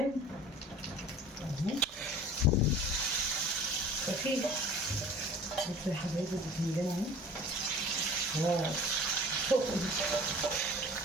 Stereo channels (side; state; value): both; normal; correlation 0.43